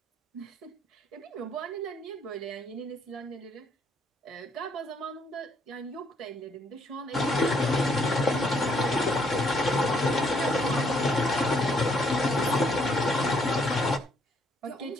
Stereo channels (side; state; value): both; normal; correlation 0.68